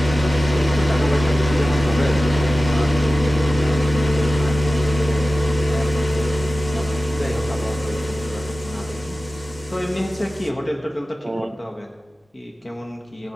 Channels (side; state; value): both; normal; correlation 0.96